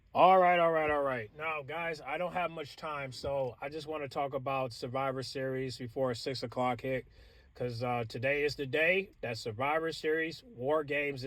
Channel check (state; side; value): identical; both; correlation 1.00